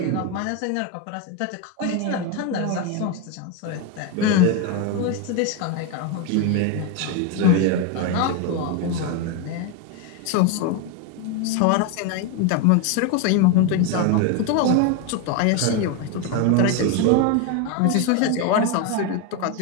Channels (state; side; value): different; both; correlation 0.02